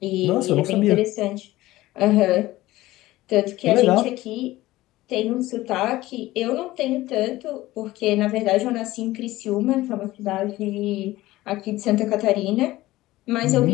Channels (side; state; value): right; quieter; 17.3 dB